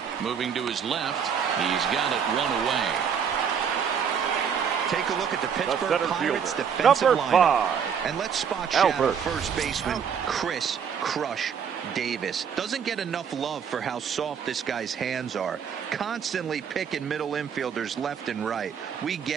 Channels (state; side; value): quieter; left; 7.4 dB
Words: moving to his left. He's got it 1 away. Take a look at the Pittsburgh Pirates defensive Number lineup. 5. And let's spot shadow first baseman Chris Crush Davis. Doesn't get enough love for how soft this guy's hands are. Constantly picking middle infielders left and right. We